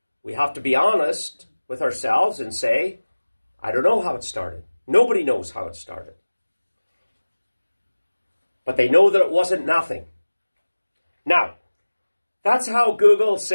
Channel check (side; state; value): both; inverted; correlation -1.00